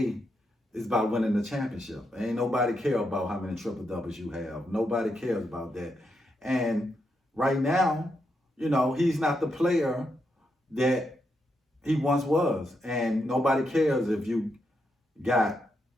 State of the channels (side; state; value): both; normal; correlation 0.82